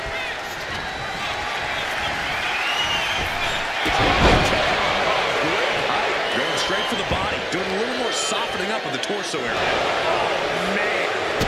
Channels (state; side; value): identical; both; correlation 1.00